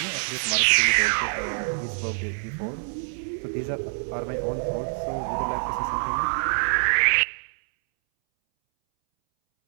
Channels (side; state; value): left; silent; 61 dB below the other